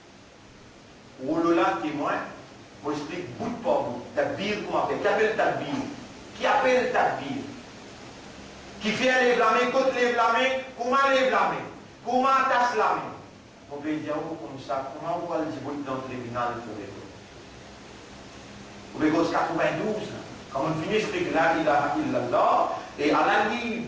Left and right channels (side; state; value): both; identical; correlation 1.00